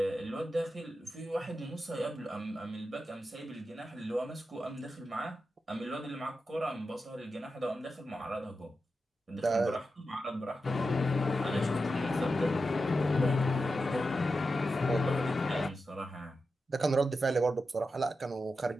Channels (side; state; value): both; normal; correlation 0.90